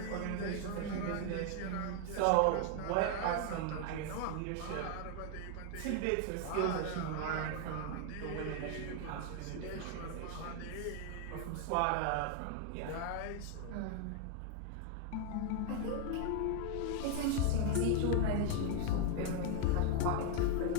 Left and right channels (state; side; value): different; both; correlation 0.00